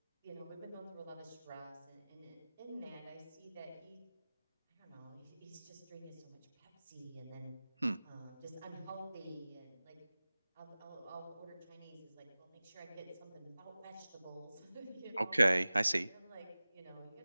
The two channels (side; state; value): both; inverted; correlation -0.98